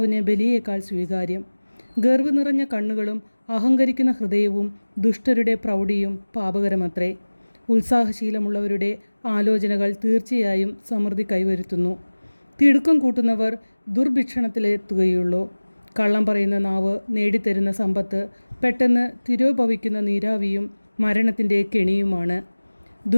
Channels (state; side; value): inverted; both; correlation -1.00